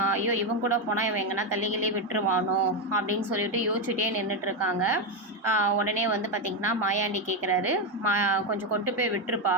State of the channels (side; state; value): both; normal; correlation 0.08